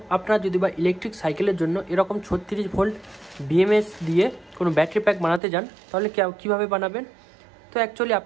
আপনারা যদি বা ইলেকট্রিক সাইকেলের জন্য এরকম 36 ভোল্ট বিএমএস দিয়ে কোনো ব্যাটারি প্যাক বানাতে যান তাহলে কীভাবে বানাবেন। তো অ্যাকচুয়ালি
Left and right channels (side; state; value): left; drops out; at 5.4 s